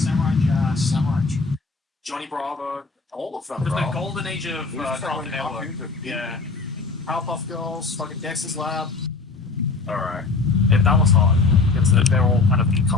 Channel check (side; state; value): right; quieter; 4.1 dB